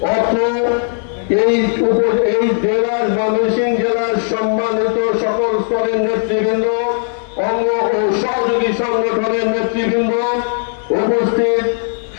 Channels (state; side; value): silent; right; 66 dB below the other